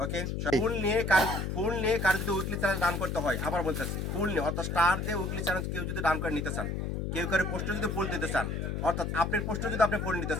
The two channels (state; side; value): noise; left; hum, 2 dB below the sound